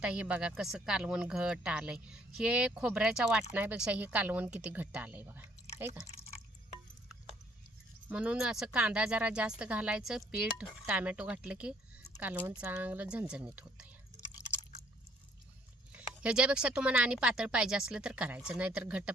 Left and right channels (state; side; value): normal; both; correlation 0.64